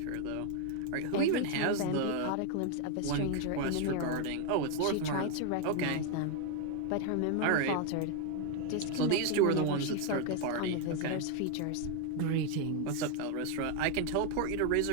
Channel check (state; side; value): different; both; correlation 0.01